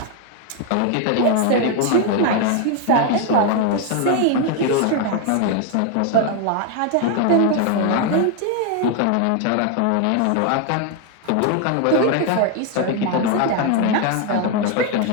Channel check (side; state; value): both; different; correlation 0.00